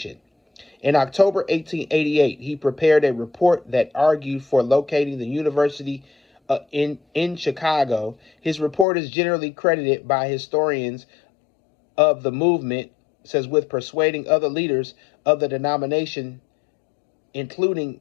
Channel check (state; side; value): drops out; right; at 8.8 s